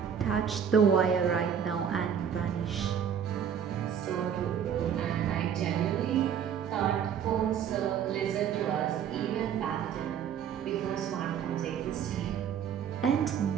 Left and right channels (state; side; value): quieter; left; 8.3 dB